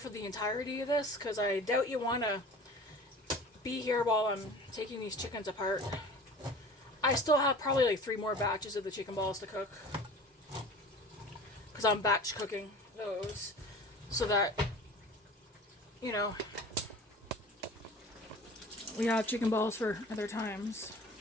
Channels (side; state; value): both; normal; correlation 0.41